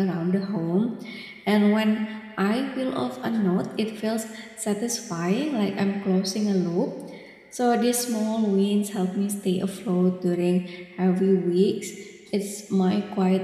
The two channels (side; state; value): both; identical; correlation 1.00